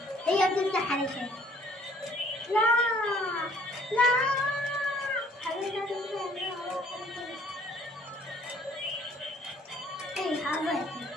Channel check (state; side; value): normal; both; correlation 0.59